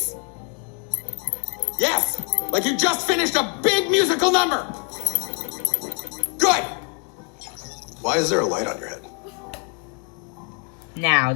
Yes, like you just finished a big musical number. Good. Why is there a light on your head? Now,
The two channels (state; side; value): quieter; right; 38.2 dB